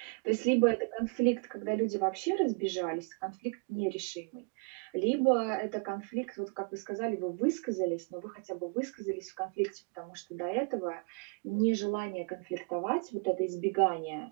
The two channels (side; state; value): left; quieter; 35.6 dB